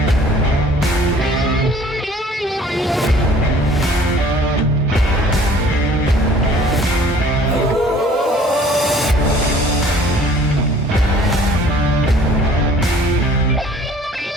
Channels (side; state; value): both; normal; correlation 0.52